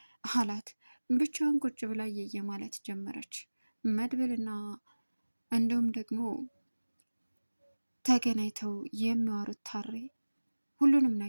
አላት። ብቻዋን ቁጭ ብላ እየየ ማለት ጀመረች። መድብልና እንዲሁም ደግሞ ተገናኝተው የሚዋሩት ታሬ ሁሉንም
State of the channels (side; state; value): both; inverted; correlation -1.00